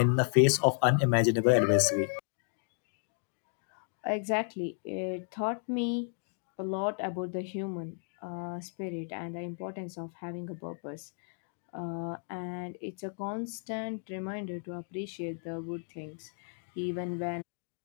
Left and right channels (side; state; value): right; silent; 56 dB below the other